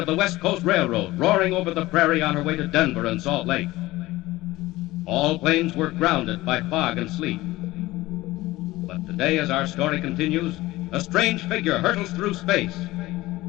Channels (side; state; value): right; quieter; 18.3 dB